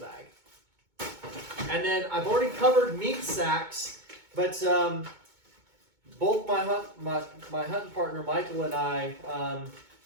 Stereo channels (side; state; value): left; late; 2.2 ms